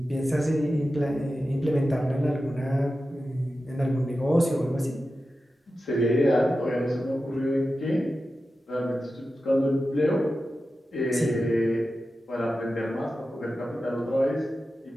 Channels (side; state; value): both; normal; correlation 0.92